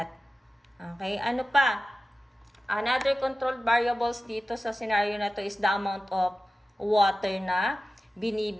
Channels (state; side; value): normal; both; correlation 0.95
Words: Okay, ano pa? Another controlled variables dito sa scenario na to is the amount of water na